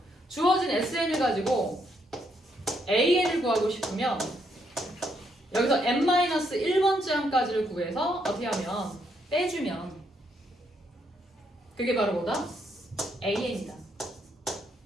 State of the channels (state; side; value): normal; both; correlation 0.74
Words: 주어진 SN을 가지고 AN을 구하고 싶으면 여기서 n-1번째 항까지를 구해서 어떻게 하면 빼주면 그게 바로 뭐다? AN이다.